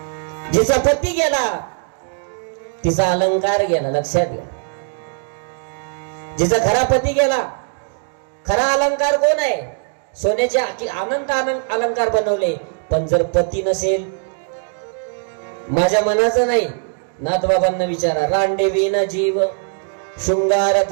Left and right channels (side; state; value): left; silent; 61 dB below the other